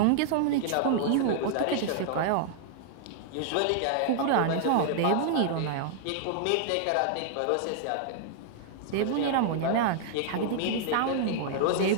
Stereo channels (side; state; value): both; different; correlation -0.01